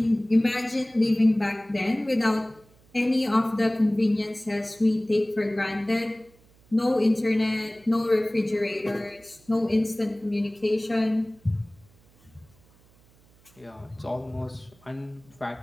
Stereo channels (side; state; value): right; noise; hum, 30 dB below the sound